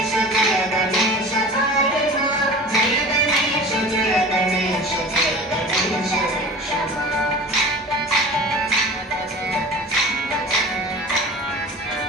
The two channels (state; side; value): normal; both; correlation 0.38